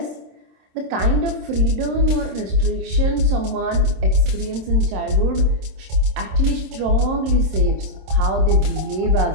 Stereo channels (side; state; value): left; late; 27 ms